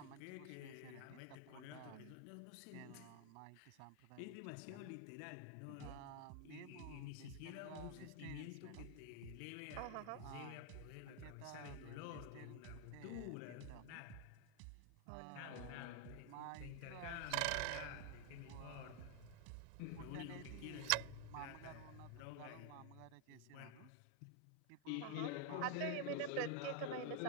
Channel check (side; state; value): both; different; correlation 0.00